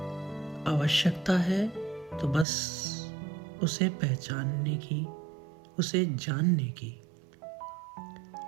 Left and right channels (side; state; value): left; drops out; at 2.5 s